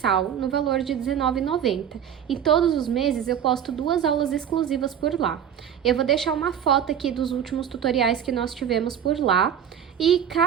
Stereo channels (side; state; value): left; quieter; 9.0 dB